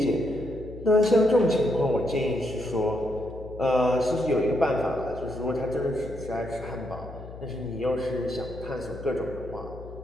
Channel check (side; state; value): left; noise; hum, 14 dB below the sound